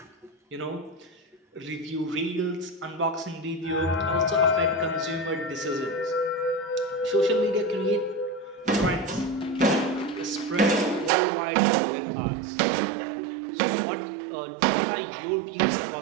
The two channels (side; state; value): left; drops out; at 11.1 s